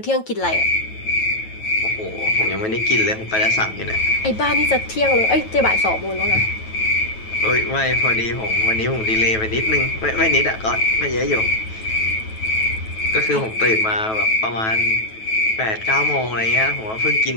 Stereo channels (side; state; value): right; late; 9.2 ms